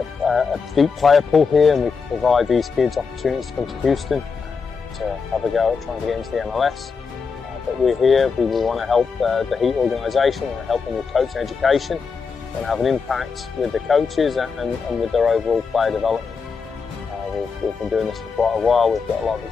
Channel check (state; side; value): quieter; right; 5.3 dB